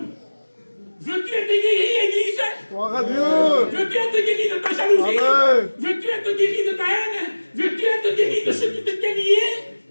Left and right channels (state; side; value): inverted; both; correlation -1.00